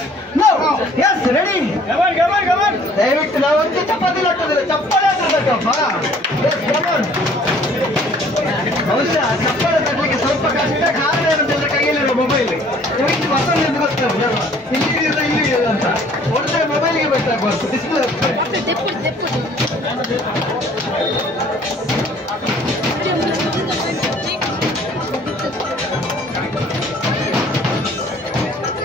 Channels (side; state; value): both; normal; correlation 0.56